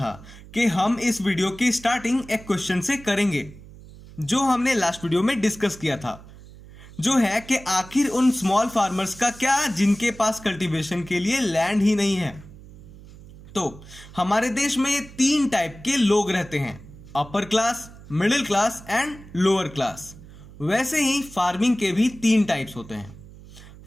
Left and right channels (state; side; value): noise; right; hum, 19 dB below the sound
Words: कि हम इस वीडियो की स्टार्टिंग एक क्वेश्चन से करेंगे जो हमने लास्ट वीडियो में डिस्कस किया था, जो है कि आखिर उन स्मॉल फार्मर्स का क्या जिनके पास कल्टीवेशन के लिए लैंड ही नहीं है। तो हमारे देश में 3 टाइप के लोग रहते हैं, upper class, middle class and lower class. वैसे ही फार्मिंग के भी 3 टाइप्स होते हैं।